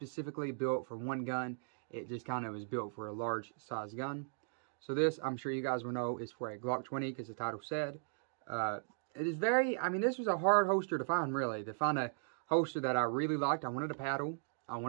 built for one gun. It just kind of was built for a large size gun. So this, I'm sure you guys will know, is for a Glock 20, because the title said. It is very, I mean, this was a hard holster to find, really. To find a holster that I really liked. I wanted a paddle, I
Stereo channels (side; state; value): left; silent; digital silence